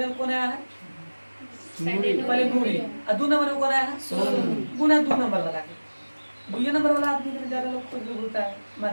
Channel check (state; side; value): inverted; both; correlation -1.00